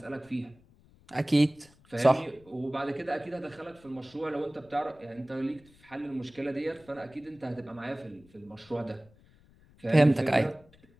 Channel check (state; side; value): noise; left; rumble, 28 dB below the sound